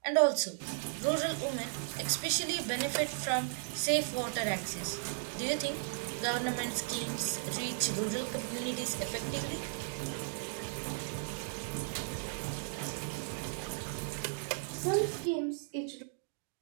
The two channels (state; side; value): silent; left; digital silence